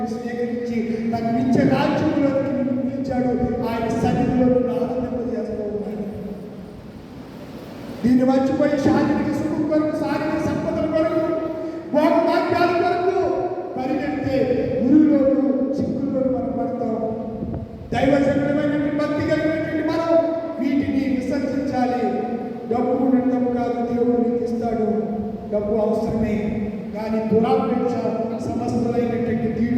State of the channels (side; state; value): both; identical; correlation 1.00